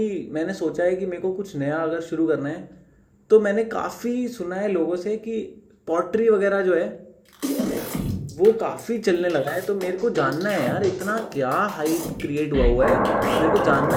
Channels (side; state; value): both; identical; correlation 1.00